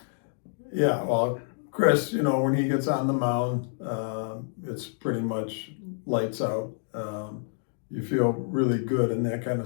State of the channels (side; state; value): right; silent; digital silence